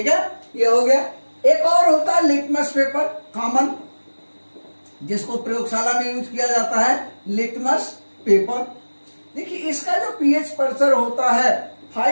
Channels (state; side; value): inverted; both; correlation -1.00